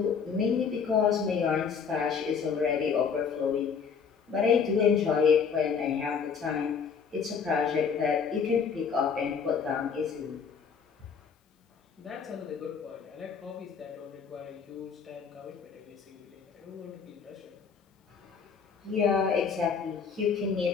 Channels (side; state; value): right; quieter; 6.3 dB